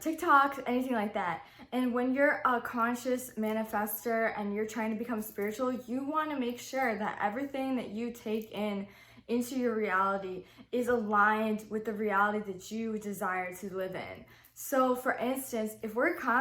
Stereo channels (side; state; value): both; identical; correlation 1.00